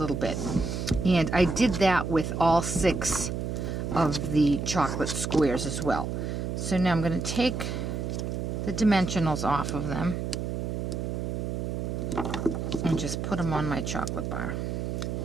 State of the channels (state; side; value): noise; right; hum, 3 dB below the sound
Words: bit. And I did that with all 6 of the chocolate squares as well. So now I'm going to take the dimensionals off of them and just put them on my chocolate bar.